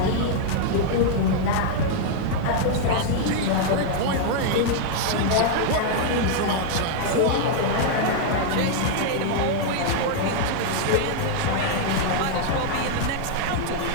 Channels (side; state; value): both; different; correlation -0.01